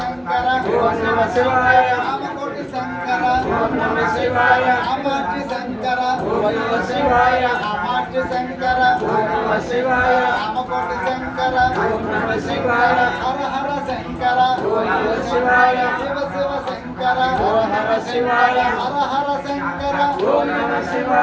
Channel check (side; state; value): both; identical; correlation 1.00